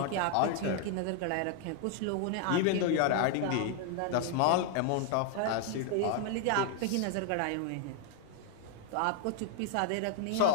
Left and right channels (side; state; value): both; different; correlation 0.00